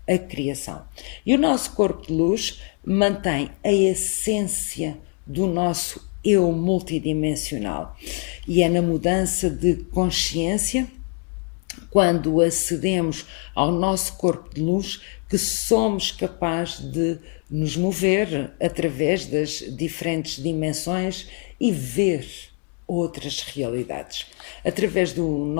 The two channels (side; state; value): right; quieter; 37.4 dB